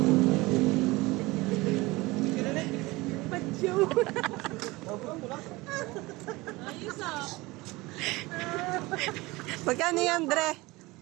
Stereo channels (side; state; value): left; quieter; 21.7 dB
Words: Ayos ah. Magkano yan, Dre?